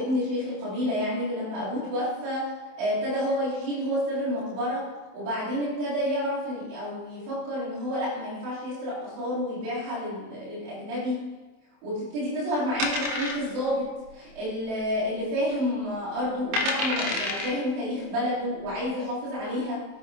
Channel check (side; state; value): left; late; 27 ms